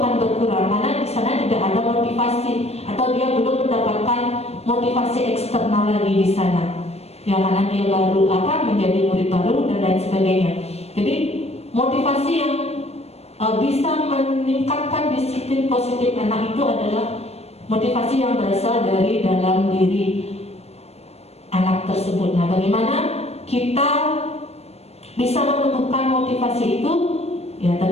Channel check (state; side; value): late; right; 0.30 ms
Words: berkurang karena di sana tidak ada motivasi atau dia belum mendapatkan motivasi eksternal lagi di sana. Ya karena dia baru menjadi murid baru dan lain sebagainya. Jadi motivasi yang bisa meningkatkan disiplin positif anak itu adalah motivasi yang berasal dari dalam diri anak tersebut. Nah, bagaimana kita bisa menumbuhkan motivasi itu? Ya